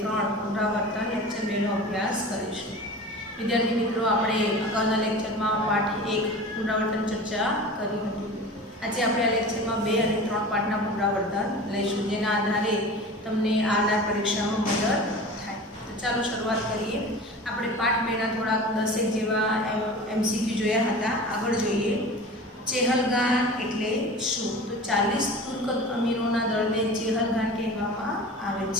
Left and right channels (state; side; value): normal; both; correlation 0.36